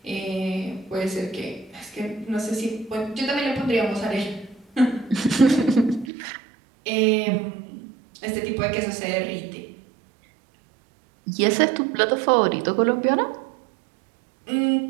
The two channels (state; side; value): drops out; left; at 6.1 s